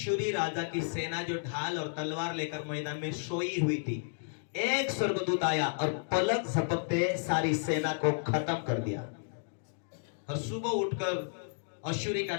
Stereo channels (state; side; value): silent; right; digital silence